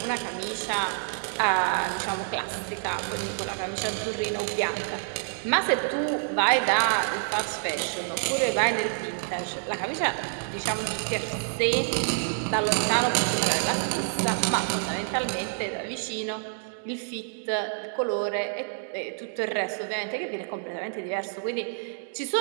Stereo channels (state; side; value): silent; left; digital silence